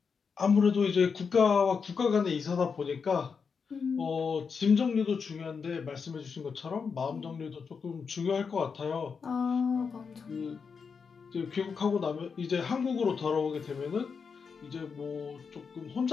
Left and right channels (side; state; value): right; quieter; 5.7 dB